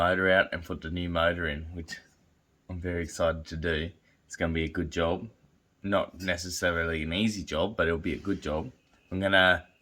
out and put the new motor in, which I'm very excited to do. It's going to be a good job. Not necessarily an easy job, but it'll be a good job. I'm going to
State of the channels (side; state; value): both; identical; correlation 1.00